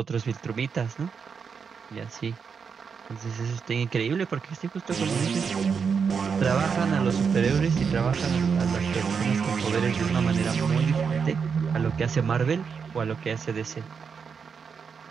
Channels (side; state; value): left; quieter; 6.1 dB